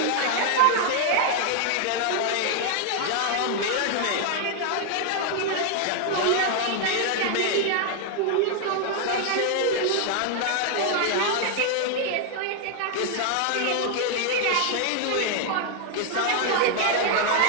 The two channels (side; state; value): both; different; correlation 0.00